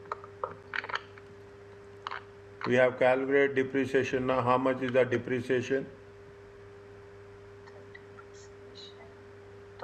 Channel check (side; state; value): both; identical; correlation 1.00